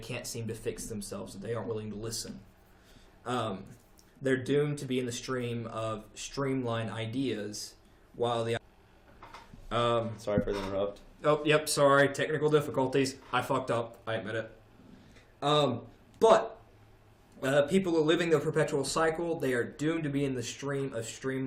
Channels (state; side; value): identical; both; correlation 1.00